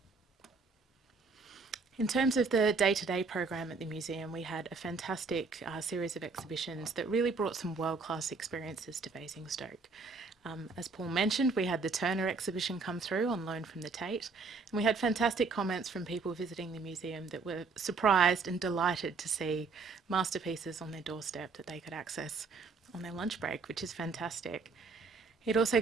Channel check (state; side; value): quieter; left; 4.4 dB